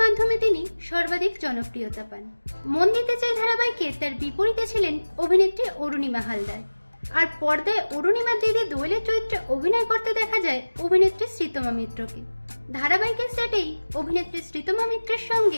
মাধ্যমে তিনি সর্বাধিক জনপ্রিয়তা পান। মন দিতে চাই ধারাবাহিকে তার বিপরীতে ছিলেন অভিনেত্রী অরুণিমা হালদার। আর পর্দায় অরুণিমা দিদি দোয়েলের চরিত্রে অভিনয় করতে দেখা যায় অভিনেত্রী শ্রীতমা মিত্রকে। ধারাবাহিকের সেটেই অভিনেত্রী শ্রীতমা মিত্রের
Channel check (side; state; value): both; inverted; correlation -1.00